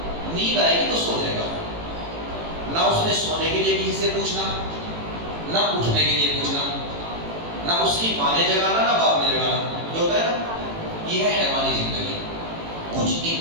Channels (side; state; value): left; late; 18 ms